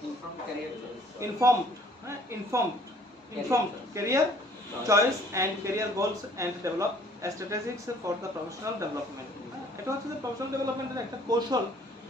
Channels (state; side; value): normal; both; correlation 0.57